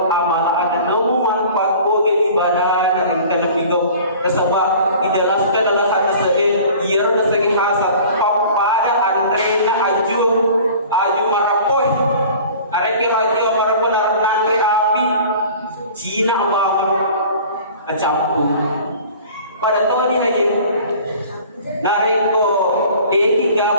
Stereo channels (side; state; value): both; inverted; correlation -0.45